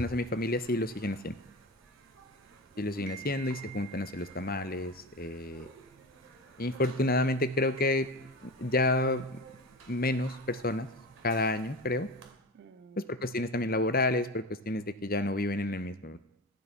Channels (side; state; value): both; normal; correlation 0.28